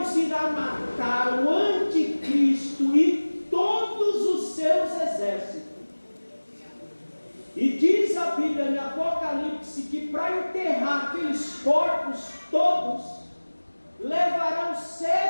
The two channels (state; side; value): inverted; both; correlation -1.00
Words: irá matar o anticristo e todos os seus exércitos. E diz a Bíblia em Apocalipse que para enterrar aqueles corpos todos, levarão